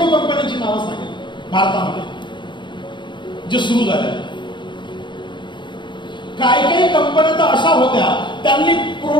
कंपन्यांची नावं सांगेन भारतामध्ये जे सुरू झाल्या. काही काही कंपन्या तर अशा होत्या, त्यांनी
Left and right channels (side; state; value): right; late; 0.23 ms